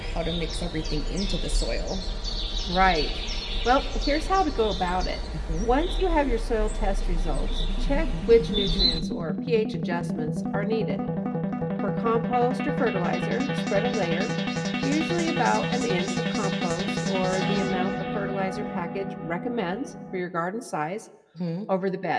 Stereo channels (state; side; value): identical; both; correlation 1.00